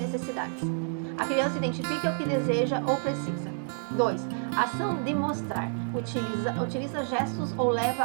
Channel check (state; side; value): silent; left; 59 dB below the other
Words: A criança identifica o que deseja ou precisa. 2. Ação de mostrar. Utiliza gestos ou